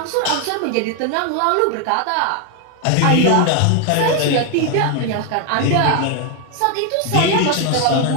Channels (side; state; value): both; different; correlation 0.01